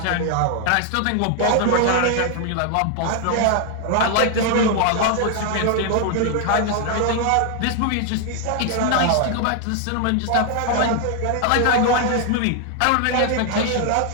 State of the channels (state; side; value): different; both; correlation 0.00